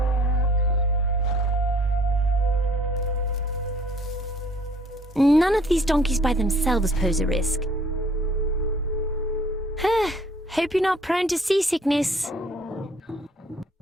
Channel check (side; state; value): both; normal; correlation 0.58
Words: None of these donkeys by themselves pose a risk. Hope you're not prone to seasickness.